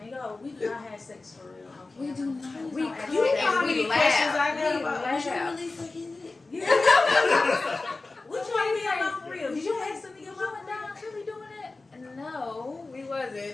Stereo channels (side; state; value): right; quieter; 3.4 dB